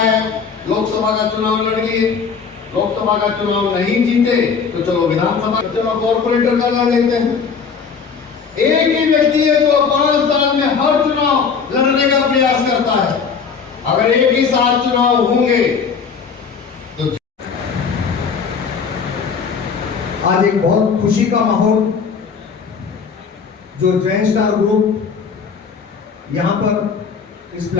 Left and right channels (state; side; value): quieter; right; 5.9 dB